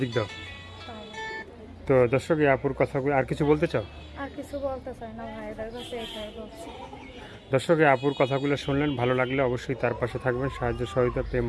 দাও। তো দর্শক, এই আপুর কথা আর কিছু বলতে চাও? আর কিছু বলতে চাই না, ভাইদের কাছে এটাই বলছি। দর্শক, এই আপুর কথাগুলো শুনলেন, ভালো লাগলে অবশ্যই তার পাশে থাকবেন। সাহায্য সহযোগিতা, প্রেম,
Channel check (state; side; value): identical; both; correlation 1.00